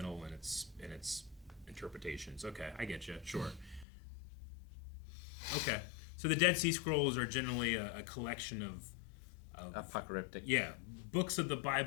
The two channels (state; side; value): drops out; right; at 3.9 s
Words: in its interpretations. Okay, I get you. Sure. Okay. So the Dead Sea Scrolls are generally a collection of apocalyptic. books of the